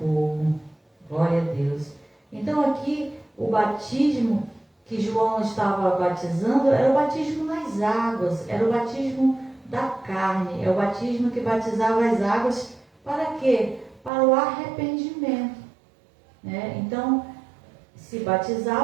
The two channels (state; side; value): drops out; left; at 14.1 s